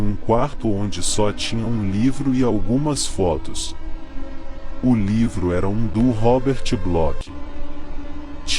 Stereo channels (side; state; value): both; identical; correlation 1.00